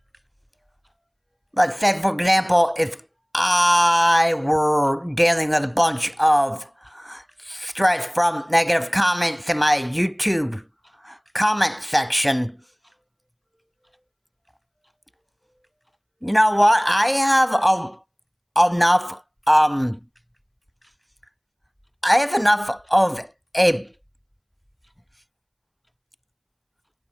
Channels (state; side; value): identical; both; correlation 1.00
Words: let's say for example, if I were dealing with a bunch of stress from negative comments in my YouTube comment section, you know what, I have enough of a